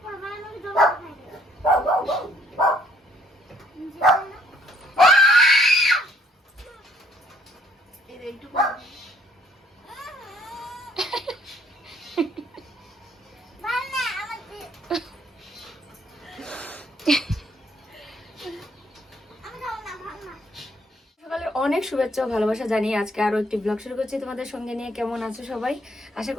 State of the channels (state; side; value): normal; both; correlation 0.63